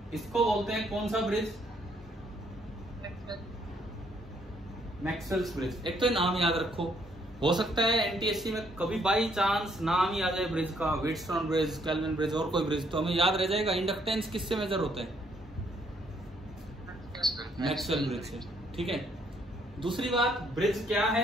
इसको बोलते हैं कौन सा ब्रिज? Maxwell's bridge. एक तो नाम याद रखो, हो सकता है एनटीएससी में कभी बाई चांस नाम ही आ जाए ब्रिज का, व्हीटस्टोन ब्रिज, केल्विन ब्रिज और कोई ब्रिज, तो हमें याद रह जाएगा इंडक्टेंस किससे मेजर होता है? मैक्सवेल ब्रिज से। ठीक है, दूसरी बात, ब्रिज क्या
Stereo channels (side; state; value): both; normal; correlation 0.69